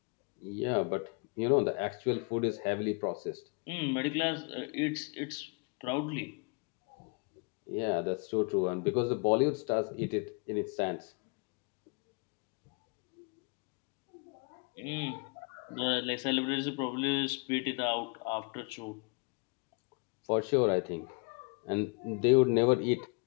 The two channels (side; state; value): right; quieter; 33.2 dB